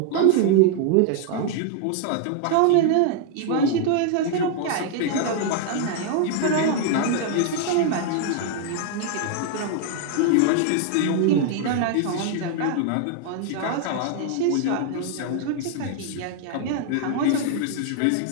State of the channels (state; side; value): different; both; correlation 0.00